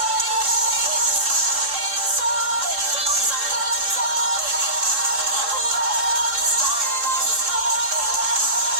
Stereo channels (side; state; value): left; late; 3.7 ms